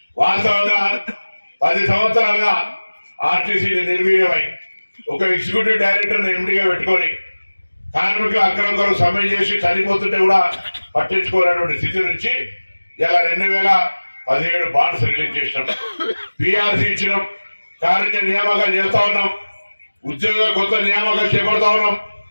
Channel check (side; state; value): both; inverted; correlation -1.00